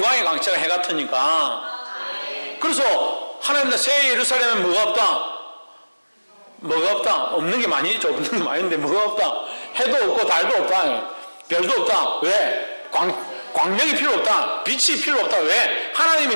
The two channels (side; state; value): both; inverted; correlation -1.00